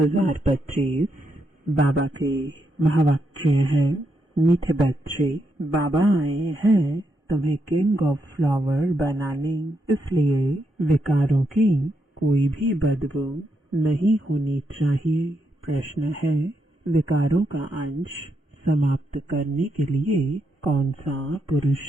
बाबा के महावाक्य हैं। मीठे बच्चे, बाबा आए हैं तुम्हें किंग ऑफ फ्लावर बनाने, इसलिए विकारों की कोई भी बदबू नहीं होनी चाहिए। प्रश्न है, विकारों का अंश समाप्त करने के लिए कौन सा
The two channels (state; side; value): normal; both; correlation 0.81